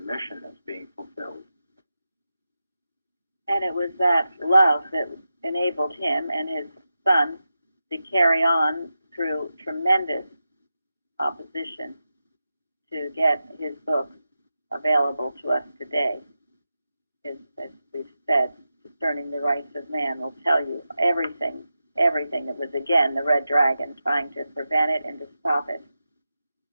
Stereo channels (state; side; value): inverted; both; correlation -0.90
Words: that's being fulfilled? And it was that love that enabled him and his son to carry on through tremendous opposition to get his book available to us today. As we've said, Discerning the Rights of Man will tell you everything that was, again, the Red Dragon trying to prevent it and to stop it